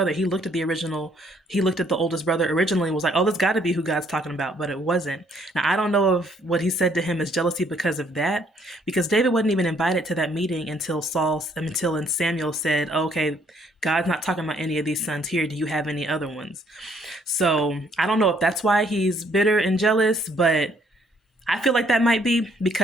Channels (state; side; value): normal; both; correlation 0.66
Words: He looked at the oldest brother originally and was like, "Oh, this got to be who God's talking about," but it wasn't. Now, I don't know if what he said to him is jealousy because of that, because David wasn't even invited to that meeting until Samuel said, "Okay, God's not talking about any of these sons here. Do you have any other ones?" So I don't know if that's why he's bitter and jealous, but I feel like that might be,